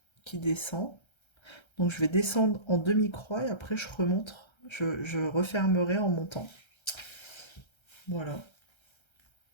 qui descend. Donc je vais descendre en demi-croix et après je remonte. Je refermerai en montant. Voilà.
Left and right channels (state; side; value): late; right; 1.3 ms